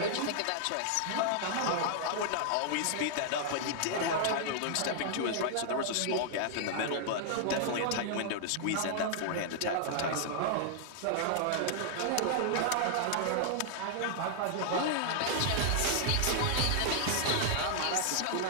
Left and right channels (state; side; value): different; both; correlation -0.01